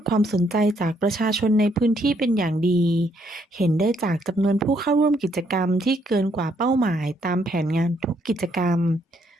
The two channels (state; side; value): normal; both; correlation 0.71